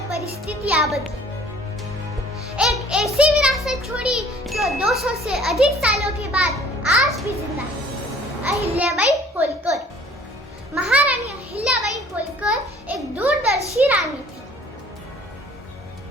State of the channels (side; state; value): both; normal; correlation 0.53